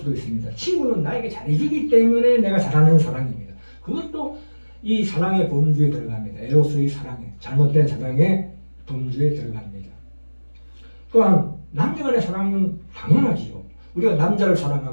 있습니다. 친구는 나에게 잘해주기 때문에 내가 잘하는 사랑입니다. 그것도 이 사랑의 범주에 들어갑니다. 에로스의 사랑에, 잘못된 사랑의 범주에 들어갑니다. 또한 남녀 간의 사랑은 당연하지요. 우리가 남자를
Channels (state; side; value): inverted; both; correlation -1.00